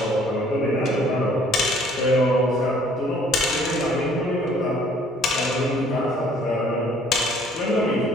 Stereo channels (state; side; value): normal; both; correlation 0.58